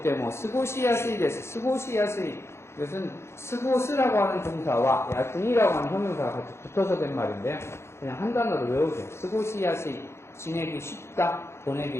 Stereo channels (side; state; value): right; late; 0.13 ms